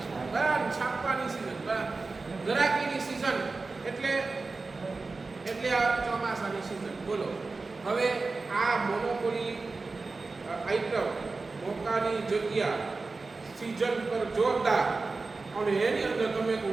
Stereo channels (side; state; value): left; quieter; 3.8 dB